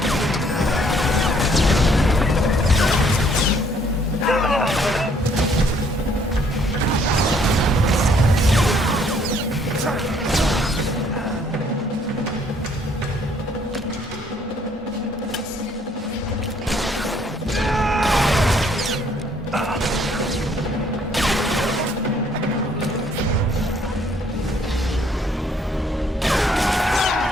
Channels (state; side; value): normal; both; correlation 0.64